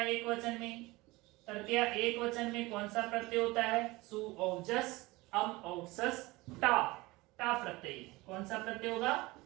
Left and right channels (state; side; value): quieter; left; 21.6 dB